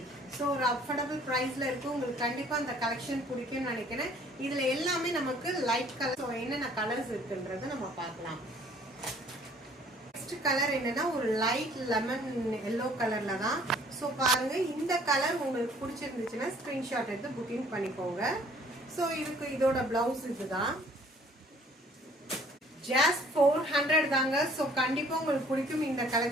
ஒரு அஃபோர்டபுள் பிரைஸ்ல இருக்கு. உங்களுக்கு கண்டிப்பா அந்த கலெக்ஷன் பிடிக்கும்னு நினைக்கிறேன். இதுல எல்லாமே நமக்கு லைட் கலர். என்னென்ன கலர்ஸ் இருக்குன்றத நம்ம பார்க்கலாம். நெக்ஸ்ட் கலர் என்னன்னா ஒரு லைட் லெமன் எல்லோ கலர்ல தான். பாருங்க இந்த கலர் உங்களுக்கு பிடிச்சிருந்துச்சுன்னா ஸ்கிரீன்ஷாட் எடுத்து புக்கிங் பண்ணிக்கோங்க. இதோட பிளவுஸ் இதுதான். ஜஸ்ட் 400 தாங்க. கண்டிப்பா உங்களுக்கு பிடிக்கும் இந்த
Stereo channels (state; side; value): normal; both; correlation 0.57